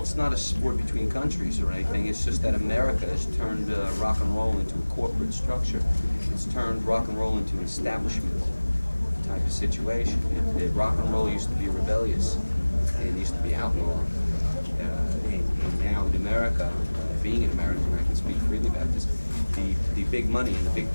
It's not a sport between countries or anything. It's just that America has turned rock and roll into a corporate structure. It's turned rock and roll into an establishment type of situation. Rock and roll used to be rebellious and used to be outlawed. And now in America, being an American, I can speak freely about this, the big money and the big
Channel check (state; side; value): inverted; both; correlation -1.00